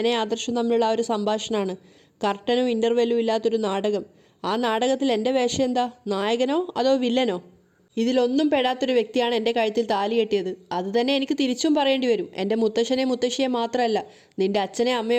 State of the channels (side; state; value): both; identical; correlation 1.00